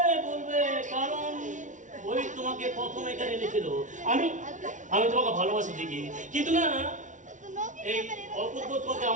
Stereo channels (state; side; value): late; left; 0.37 ms